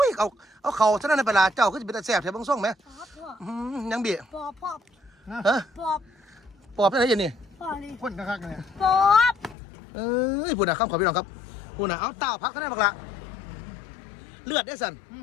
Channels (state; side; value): drops out; right; at 9.6 s